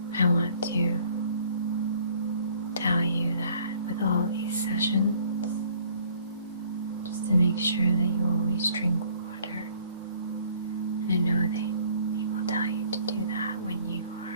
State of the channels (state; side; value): inverted; both; correlation -0.58